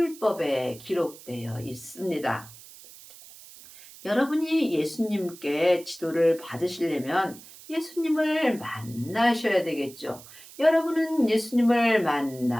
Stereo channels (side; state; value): right; noise; hiss, 19 dB below the sound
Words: 기록되어 있습니다. 여러분이 예수님께 지도를 받으시려면 예수님을 만나셔야 되겠죠. 여러분은 예수님을